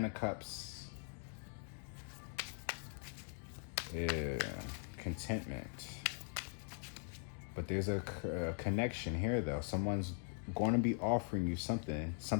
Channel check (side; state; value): right; silent; 50 dB below the other